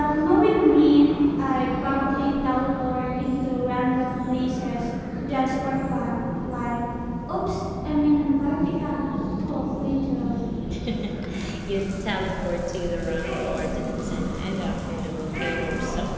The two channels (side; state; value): both; identical; correlation 1.00